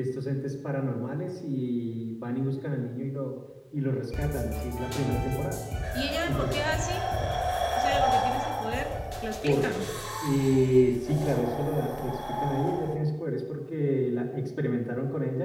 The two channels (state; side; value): identical; both; correlation 1.00